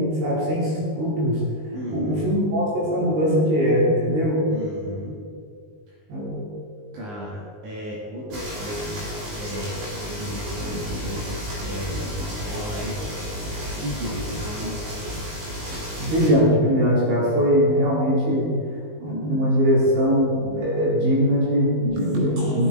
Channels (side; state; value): left; late; 19 ms